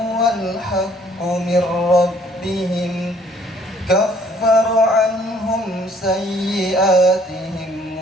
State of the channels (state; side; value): normal; both; correlation 0.60